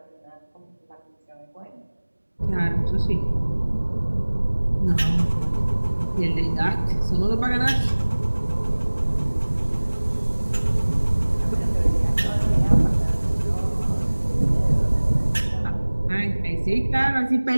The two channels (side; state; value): both; inverted; correlation -1.00